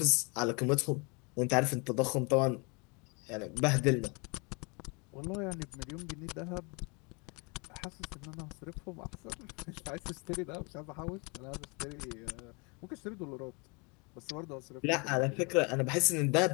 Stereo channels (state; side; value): quieter; right; 31.3 dB